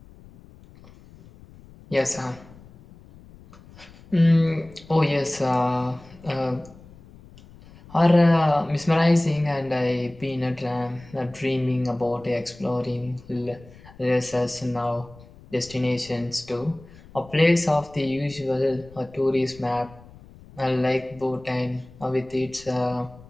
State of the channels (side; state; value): left; noise; rumble, 22 dB below the sound